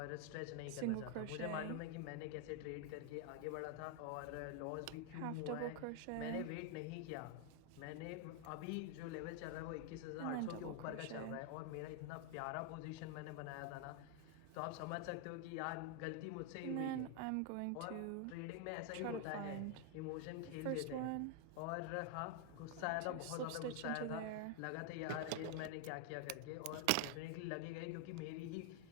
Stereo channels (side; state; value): both; different; correlation 0.00